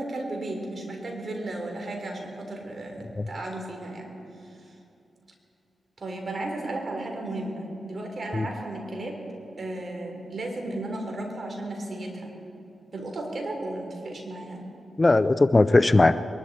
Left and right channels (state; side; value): normal; both; correlation 0.95